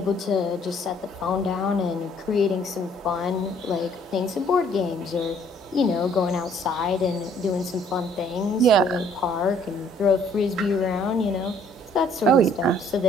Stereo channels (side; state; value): both; normal; correlation 0.61